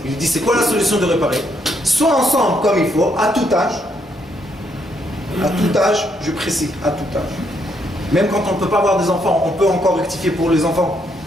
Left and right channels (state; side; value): normal; both; correlation 0.74